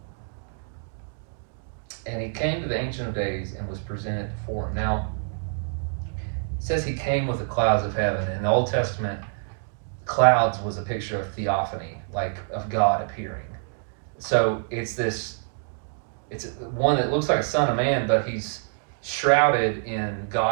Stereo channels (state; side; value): silent; left; digital silence